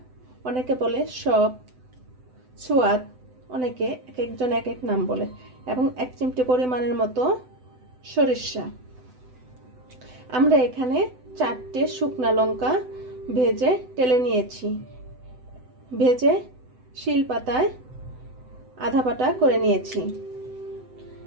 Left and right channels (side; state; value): left; late; 7.9 ms